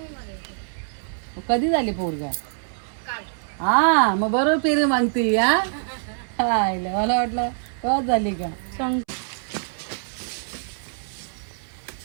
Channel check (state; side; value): silent; left; 62 dB below the other